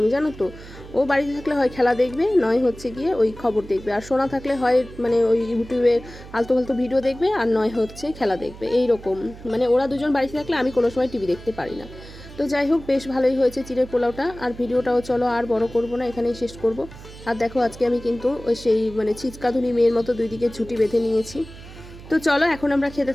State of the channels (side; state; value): right; noise; hum, 16 dB below the sound